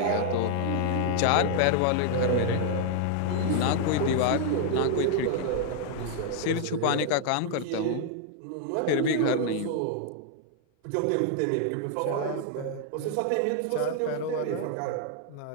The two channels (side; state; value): both; different; correlation 0.00